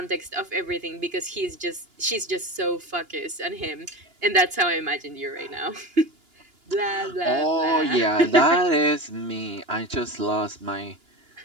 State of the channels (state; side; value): late; left; 2.9 ms